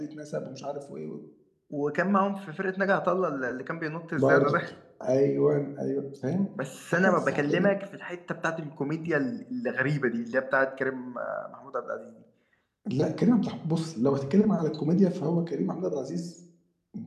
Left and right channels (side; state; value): both; identical; correlation 1.00